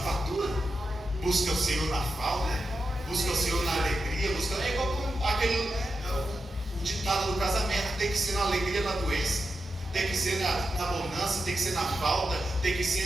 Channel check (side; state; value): both; normal; correlation 0.88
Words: Busque ao Senhor na falta. Busque ao Senhor na alegria. É igual aquele o ditado do casamento: tem que ser na alegria, na doença. Tem que ser na bonança, tem que ser na falta, tem que